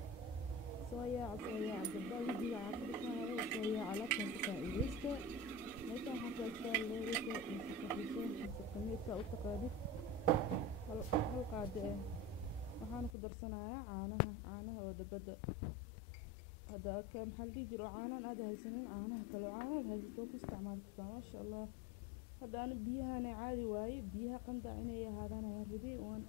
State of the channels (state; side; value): drops out; right; at 13.1 s